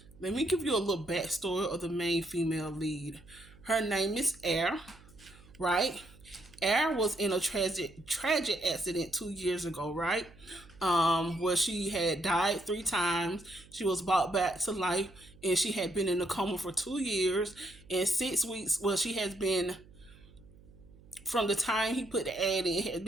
let me give you a little backstory of the main female lead. Her name is Air, right? Air was in a tragic accident 2 years ago, right? Where she had died 3 times. She was brought back to life, and she had been in a coma for 2 years and 6 weeks. Well, she has been from the time he put the ad in. It had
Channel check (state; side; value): noise; right; hum, 24 dB below the sound